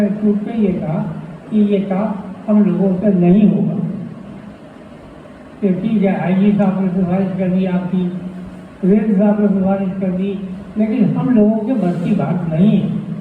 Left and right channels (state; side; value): identical; both; correlation 1.00